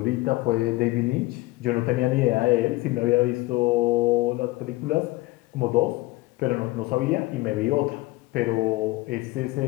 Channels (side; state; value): right; quieter; 20.5 dB